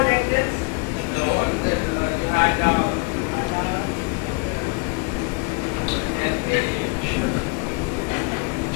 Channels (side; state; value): right; quieter; 30.5 dB